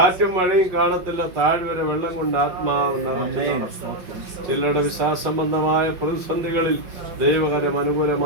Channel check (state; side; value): late; left; 5.5 ms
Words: മഴയും കാണത്തില്ല, താഴ്വര വെള്ളം കൊണ്ട് ആത്മാവ് നിറച്ചു. ചിലരുടെ വിശ്വാസംബന്ധമായ പ്രതിസന്ധികളിൽ ദൈവകരം